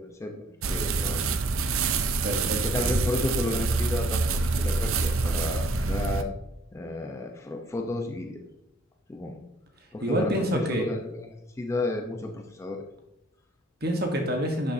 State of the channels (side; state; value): both; normal; correlation 0.61